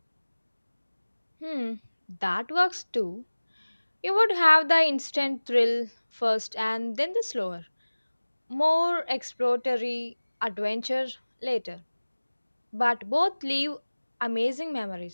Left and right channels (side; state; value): both; inverted; correlation -1.00